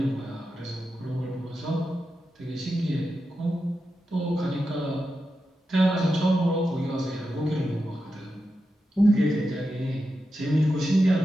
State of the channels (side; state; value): both; normal; correlation 0.89